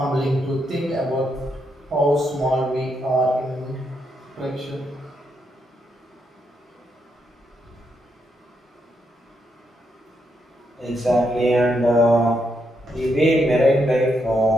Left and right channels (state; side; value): normal; both; correlation 0.79